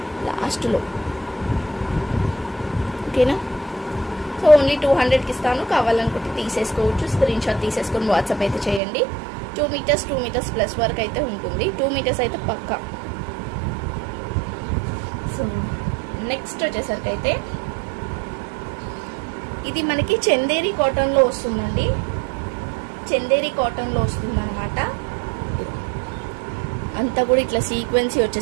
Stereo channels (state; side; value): drops out; left; at 8.8 s